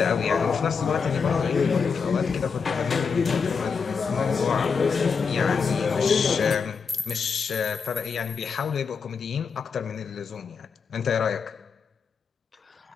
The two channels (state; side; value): quieter; right; 5.6 dB